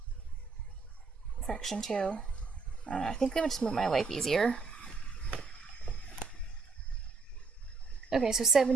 fraction too. I think that would just make my life easier. Okay, so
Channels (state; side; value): quieter; left; 4.4 dB